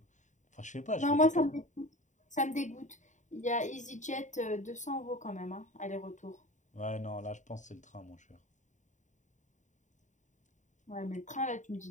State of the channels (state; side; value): late; right; 0.35 ms